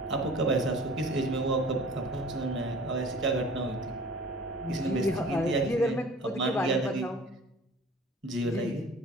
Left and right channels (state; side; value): normal; both; correlation 0.45